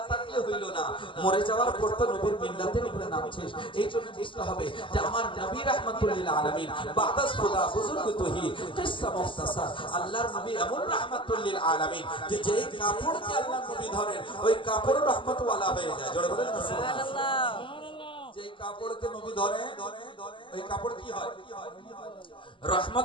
থাকলে হইল না, মরে যাওয়ার পর তো নবীর মিল্লাতের উপরে নামছিস, এই জন্য বুঝতে হবে যে আমার নবী রাহমাতুল লিল আলামিন বাদাস খুদা বুজুর্গ তোহি কিসসা মুখতাসার, আল্লাহর নবী এমন রাহমাতুল লিল আলামিন যে যেই কাপড়কে আল্লাহর নবী ধরেন ওই কাপড় রহমত ওয়ালা হয়ে যায়। জোরে বলেন না সুবহানাল্লাহ। যেই কাপড়কে নবী ধরে ওই কাপড় কি হয়?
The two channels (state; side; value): late; right; 0.25 ms